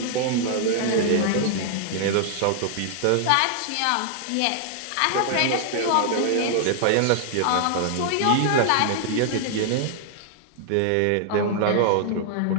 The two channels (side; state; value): both; different; correlation -0.01